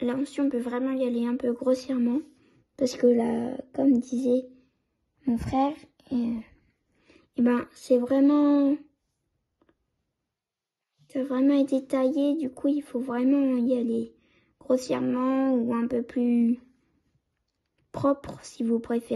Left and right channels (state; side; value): identical; both; correlation 1.00